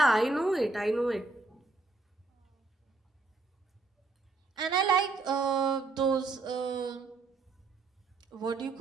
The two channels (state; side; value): quieter; left; 3.6 dB